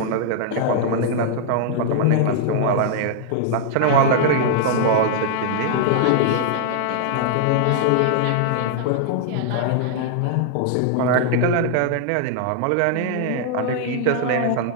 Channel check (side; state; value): both; different; correlation -0.01